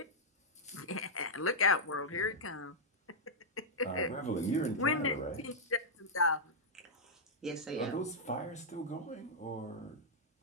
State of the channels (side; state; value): both; normal; correlation -0.07